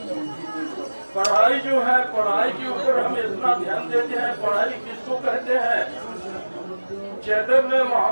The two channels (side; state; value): both; inverted; correlation -1.00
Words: पढ़ाई जो है, पढ़ाई के ऊपर हम इतना ध्यान देते हैं, पढ़ाई किसको कहते हैं। चैतन्य